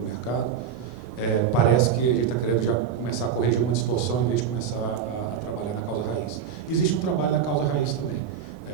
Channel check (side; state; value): left; quieter; 7.6 dB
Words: mercado, parece que a gente está querendo já começar a corrigir uma distorção em vez de começar a trabalhar na causa raiz. Existe um trabalho na causa raiz também.